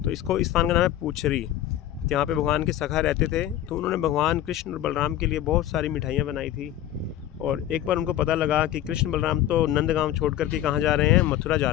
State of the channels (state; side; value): quieter; right; 12.4 dB